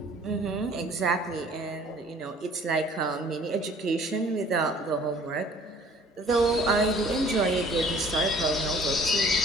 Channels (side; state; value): both; normal; correlation 0.54